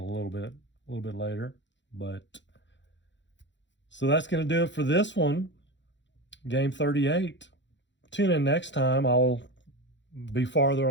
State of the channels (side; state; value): right; late; 0.53 ms